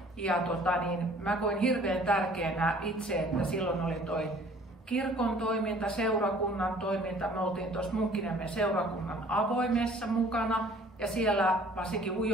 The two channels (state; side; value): normal; both; correlation 0.53